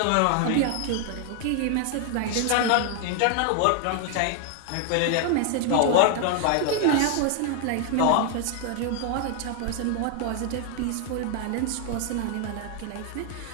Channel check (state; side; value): different; both; correlation 0.00